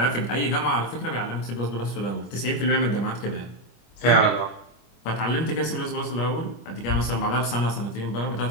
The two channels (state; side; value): late; right; 25 ms